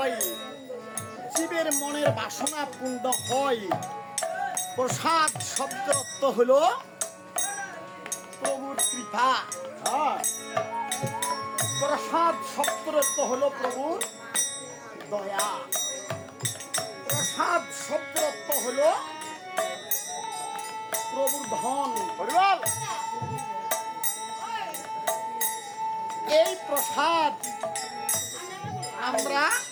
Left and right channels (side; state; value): both; identical; correlation 1.00